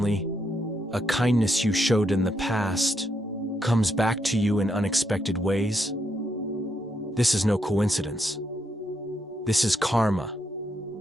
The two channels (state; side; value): normal; both; correlation 0.78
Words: a kindness you showed in the past comes back to you in unexpected ways? This is no coincidence. This is karma.